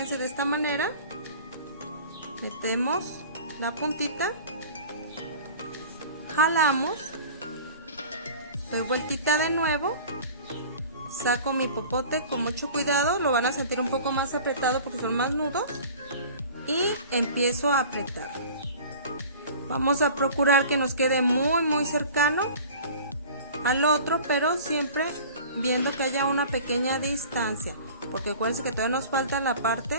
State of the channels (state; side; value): inverted; both; correlation -0.42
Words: de esta manera. Metemos la puntita, jalamos, doy vueltita de nuevo, saco mi popote con mucho cuidado, lo van a sentir un poco más apretado porque son más nudos y empiezo a apretar. Vamos a procurar que nos quede muy cercano al otro, pero siempre viendo que haya una pequeña distancia, porque acuérdense que todavía nos falta la